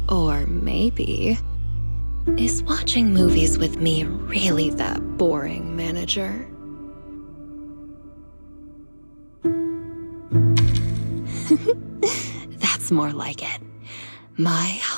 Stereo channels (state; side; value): inverted; both; correlation -1.00